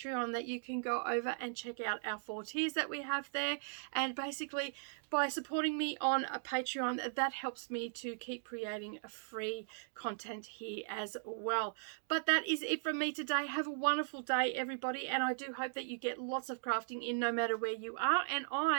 that you can go over and check out our 4 tiers that we have there. And basically, by supporting me on a Patreon, that helps me to keep creating a free content here as well. But that is it from me today. Have a wonderful day, everybody, and I do hope that you get lots of crafting in no matter where you are, and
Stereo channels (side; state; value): left; silent; digital silence